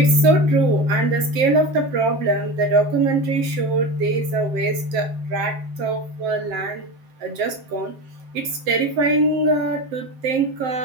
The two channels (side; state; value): left; late; 7.6 ms